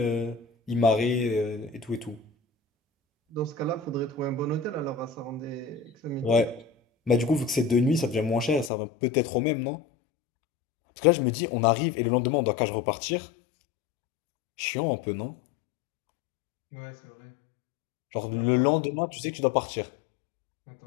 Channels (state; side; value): drops out; right; at 8.7 s